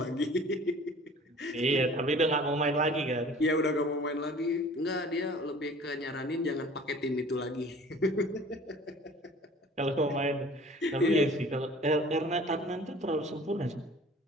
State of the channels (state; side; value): normal; both; correlation 0.48